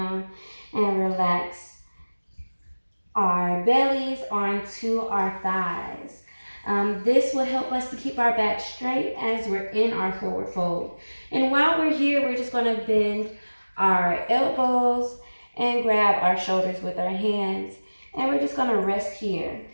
and relax our bellies onto our thighs. This will help us to keep our back straight as we're in our forward fold. And while we're here, we're just going to bend our elbows and grab our shoulders with our hands. And we're just gonna rest here,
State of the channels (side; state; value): both; inverted; correlation -1.00